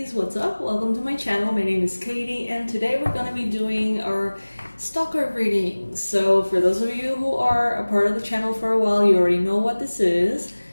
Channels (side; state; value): both; inverted; correlation -1.00